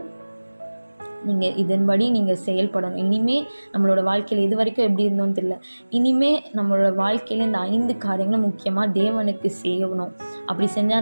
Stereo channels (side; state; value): both; inverted; correlation -1.00